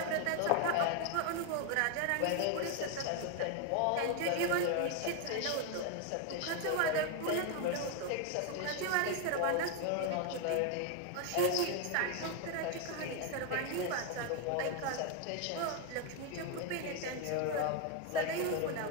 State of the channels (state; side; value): different; both; correlation 0.01